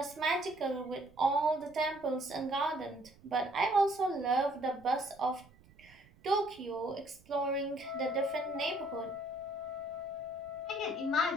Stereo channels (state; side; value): noise; right; rumble, 26 dB below the sound